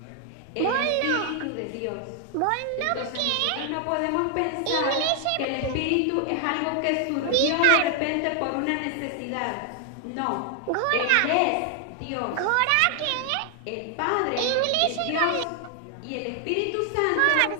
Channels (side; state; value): both; different; correlation 0.00